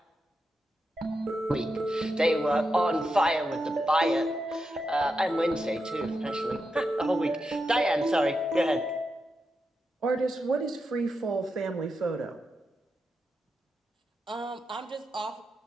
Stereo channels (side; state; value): both; normal; correlation 0.87